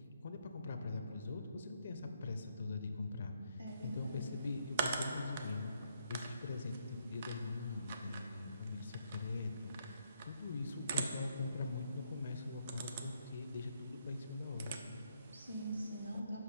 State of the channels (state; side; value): inverted; both; correlation -0.73